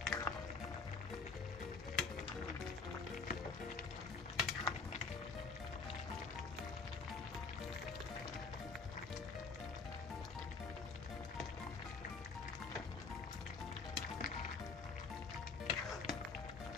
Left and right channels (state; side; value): quieter; right; 4.3 dB